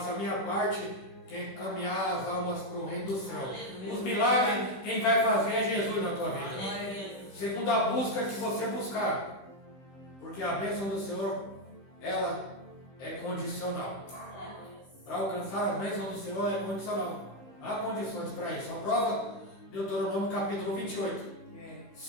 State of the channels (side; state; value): right; late; 15 ms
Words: a minha parte, que é encaminhar as almas para o reino do céu. Os milagres, quem vai fazer é Jesus na tua vida. Segundo a busca que você buscar. Porque a bênção do Senhor, ela é condicional. Para alcançar a bênção do Senhor é condicional. Há condições para isso. A prova, Deuteronômio capítulo 28.